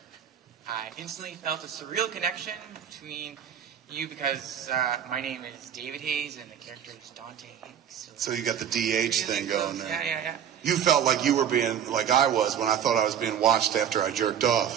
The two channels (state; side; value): quieter; left; 9.0 dB